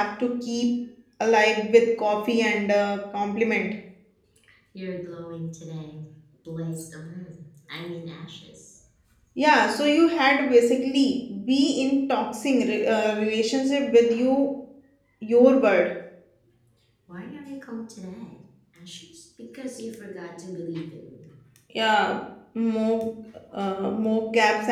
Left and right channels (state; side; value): identical; both; correlation 1.00